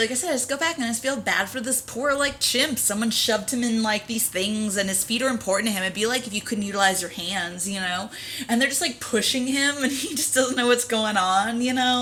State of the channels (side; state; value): both; identical; correlation 1.00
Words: I said, I just go back and I just feel bad for this poor, like, chimp. Someone shoved him in, like, these things, and his feet are important to him. It'd be like if you couldn't utilize your hands, you know? And they're just, like, pushing him, and he just doesn't know what's going on, you